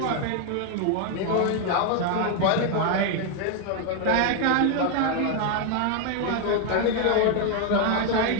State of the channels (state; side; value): different; both; correlation 0.01